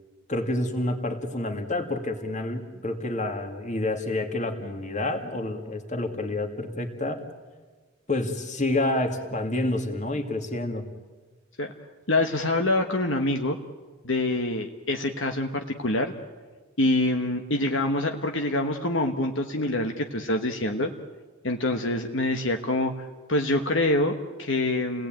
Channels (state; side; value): normal; both; correlation 0.21